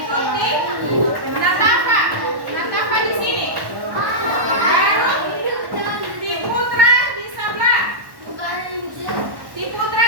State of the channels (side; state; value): left; late; 1.1 ms